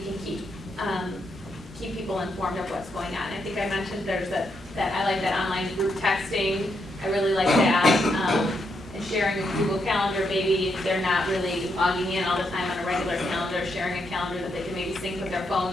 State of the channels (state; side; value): normal; both; correlation 0.80